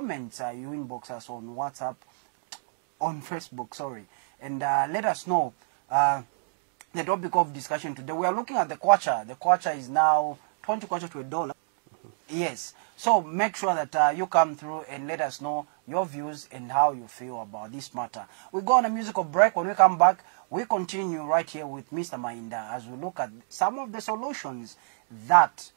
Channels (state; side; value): silent; left; digital silence